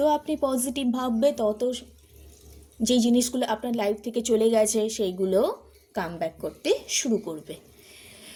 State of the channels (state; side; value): identical; both; correlation 1.00